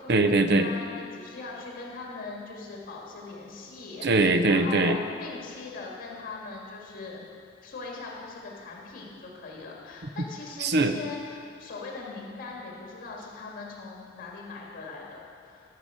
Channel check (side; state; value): both; normal; correlation 0.39